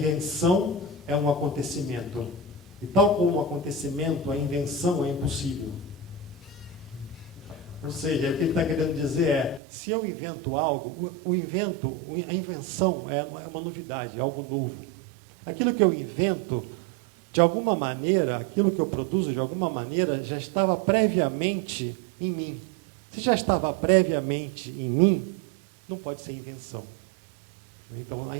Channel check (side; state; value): left; drops out; at 9.6 s